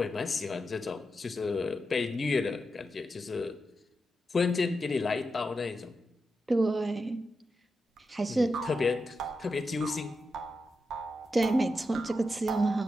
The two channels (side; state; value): both; normal; correlation 0.88